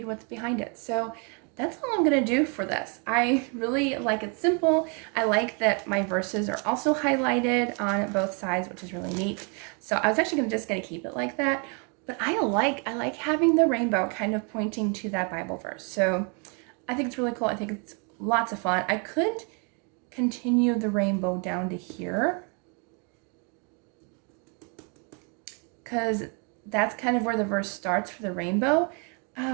what's behind it. So that's all I'm gonna do for this. I really like it simple. I like that my verses are also highlighted on both sides, which is really neat. So I was actually just gonna keep it like that, but I like having the rainbow kind of pointing to that Bible verse. So I think it's really cool. I think it's lots of fun. I could continue the rainbow down to here, because that's kind of where the verse starts for the rainbow.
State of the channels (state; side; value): quieter; left; 36.4 dB